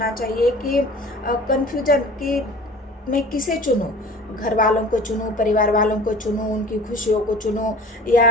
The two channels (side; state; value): both; normal; correlation 0.43